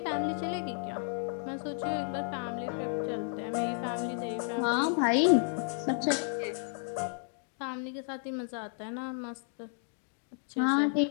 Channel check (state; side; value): silent; right; 56 dB below the other